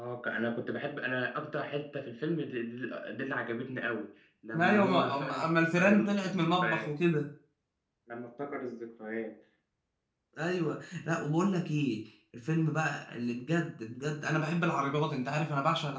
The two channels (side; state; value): both; identical; correlation 1.00